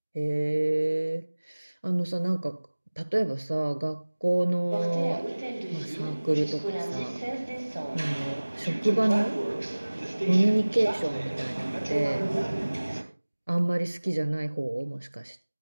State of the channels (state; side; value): inverted; both; correlation -1.00